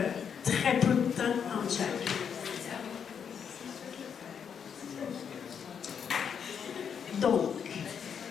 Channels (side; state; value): right; quieter; 7.4 dB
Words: très peu de temps entre chaque. Donc,